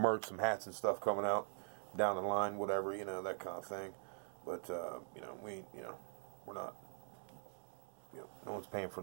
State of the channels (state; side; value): silent; left; digital silence